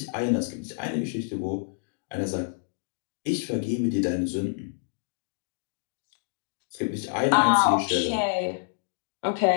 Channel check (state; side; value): silent; right; digital silence